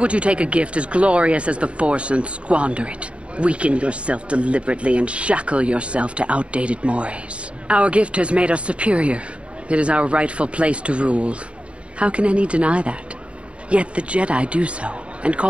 you take a gift as glorious as the Force and squander it? Weaken yourself deliberately and shackle yourself to outdated mores. Our gift has made us superior. It is our rightful place to rule. How can any deny that? Yet the Jedi do so, and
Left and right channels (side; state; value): left; late; 0.060 ms